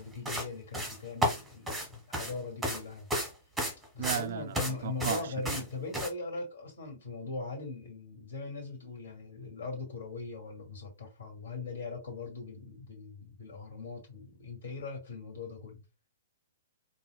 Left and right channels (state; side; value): normal; both; correlation -0.12